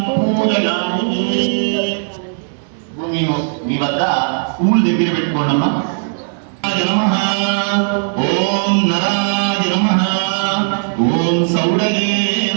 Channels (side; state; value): left; silent; digital silence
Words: పూజయామి. మీ వద్ద పూలు దగ్గర పెట్టుకోండమ్మా. నమః ఓం నరాయ నమః. ఓం సౌడగే